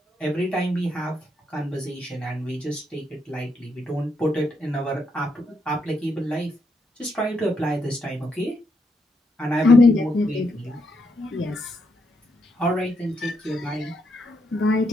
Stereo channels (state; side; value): normal; both; correlation 0.78